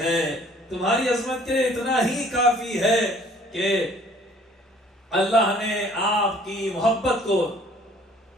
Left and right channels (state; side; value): normal; both; correlation 0.56